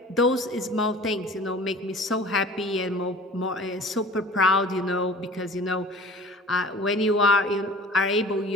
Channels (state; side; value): normal; both; correlation 0.44